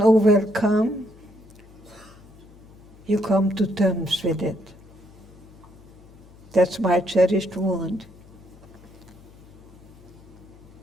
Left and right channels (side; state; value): left; noise; hum, 23 dB below the sound